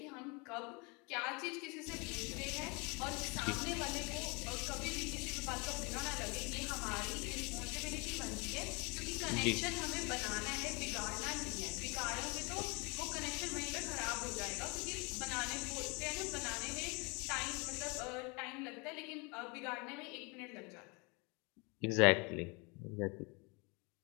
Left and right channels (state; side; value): quieter; right; 29.7 dB